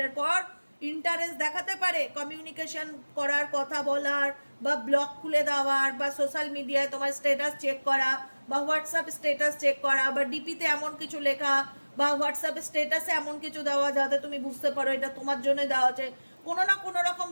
পর ইন্টারেস্ট দেখাতে পারে কমিউনিকেশন করার, কথা বলার, বা ব্লগ খুলে দেওয়ার, বা সোশ্যাল মিডিয়ায় তোমার স্ট্যাটাস চেক করা, বা হোয়াটসঅ্যাপ স্ট্যাটাস চেক করা, বা ডিপিতে এমন কিছু লেখা, বা হোয়াটসঅ্যাপ স্ট্যাটাসে এমন কিছু দেওয়া যাতে তুমি বুঝতে পারো এটা তোমার জন্য দেওয়া আছে। কোনো না কোনো রকম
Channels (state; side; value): inverted; both; correlation -1.00